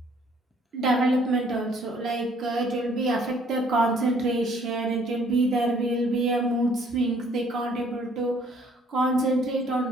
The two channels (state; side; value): normal; both; correlation 0.61